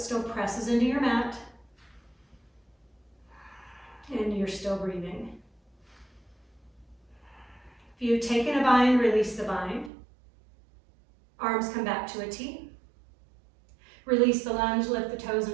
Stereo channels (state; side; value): drops out; left; at 9.9 s